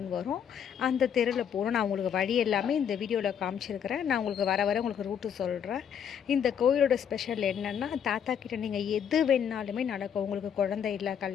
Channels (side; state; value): right; quieter; 8.3 dB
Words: வரும். அந்த தெருவில் போகணும். நான் உங்களுக்கு வழி எல்லாமே இந்த வீடியோவில் காமிச்சிருக்கிறேன். நான் உங்களுக்கு வர உங்களுக்கு ரூட்டு சொல்கிறேன். இந்த கோயிலோட ஸ்பெஷல் என்னென்னா, தாத்தா கிட்ட நீங்கள் எது வேணாலுமே நடக்கும். உங்களுக்கு குழந்தை இல்லை,